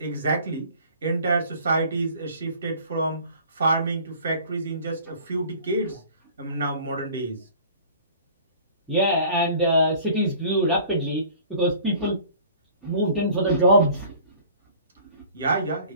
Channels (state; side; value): inverted; both; correlation -0.48